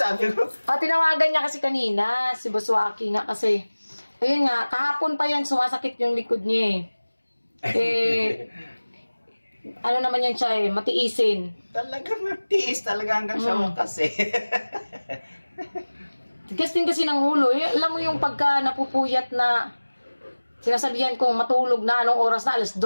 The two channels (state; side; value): inverted; both; correlation -1.00